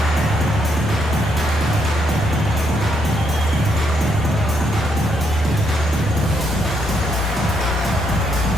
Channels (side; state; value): both; normal; correlation 0.75